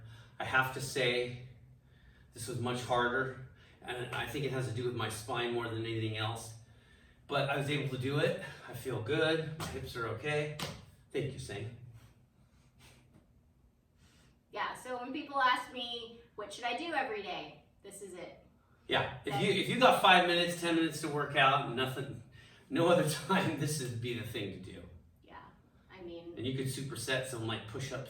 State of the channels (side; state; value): both; identical; correlation 1.00